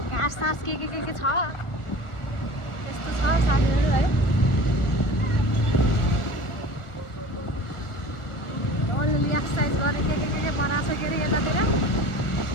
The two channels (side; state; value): right; late; 1.4 ms